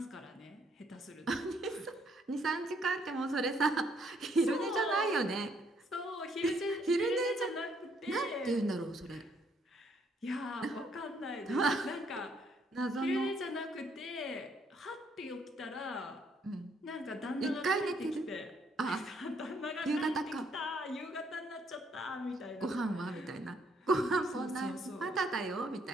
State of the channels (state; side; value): normal; both; correlation 0.69